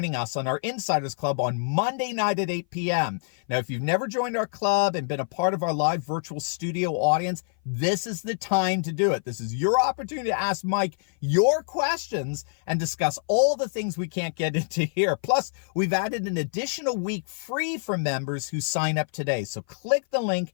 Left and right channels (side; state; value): right; silent; 57 dB below the other